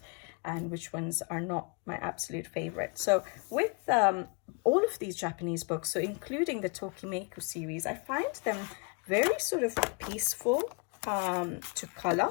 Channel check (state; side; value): quieter; right; 34.6 dB